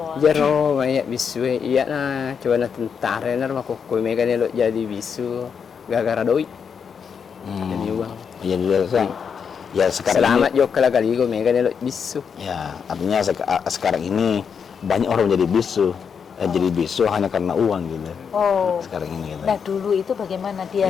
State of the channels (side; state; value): right; quieter; 6.7 dB